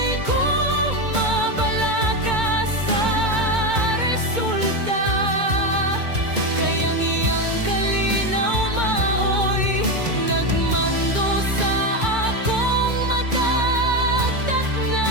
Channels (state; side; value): late; left; 2.2 ms